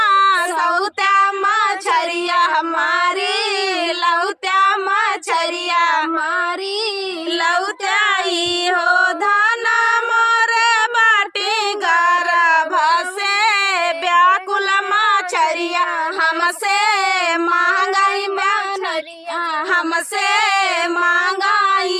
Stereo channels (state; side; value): identical; both; correlation 1.00